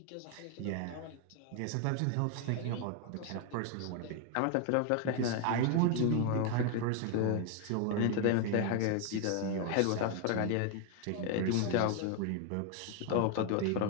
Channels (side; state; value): both; different; correlation 0.01